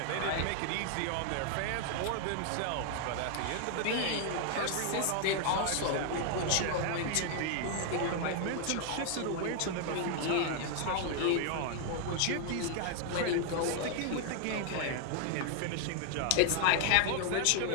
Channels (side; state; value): both; different; correlation 0.00